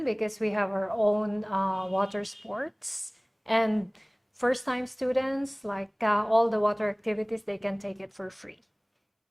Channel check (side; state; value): both; identical; correlation 1.00